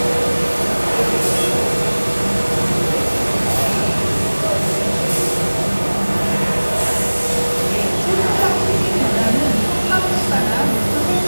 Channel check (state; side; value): inverted; both; correlation -1.00